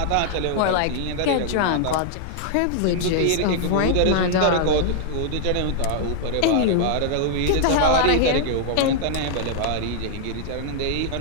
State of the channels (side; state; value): both; different; correlation -0.01